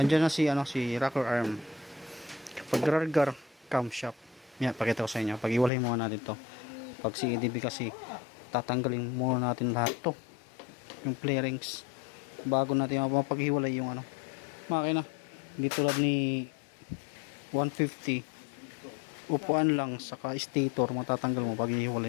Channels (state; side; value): drops out; right; at 5.7 s